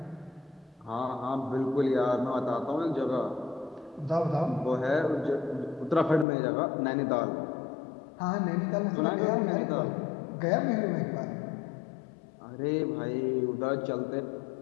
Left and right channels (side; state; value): right; drops out; at 6.2 s